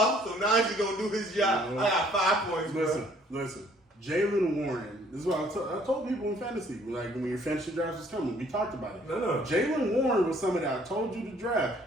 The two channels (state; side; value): normal; both; correlation 0.61